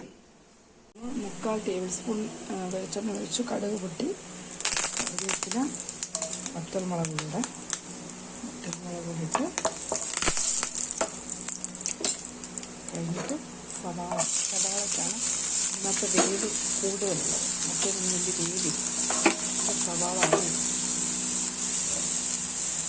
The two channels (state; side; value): identical; both; correlation 1.00